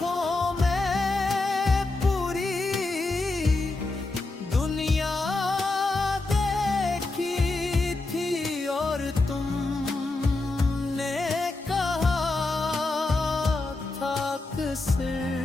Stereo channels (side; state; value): right; quieter; 3.2 dB